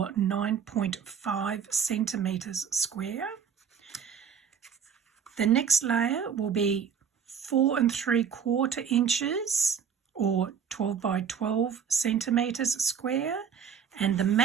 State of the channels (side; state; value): left; quieter; 7.3 dB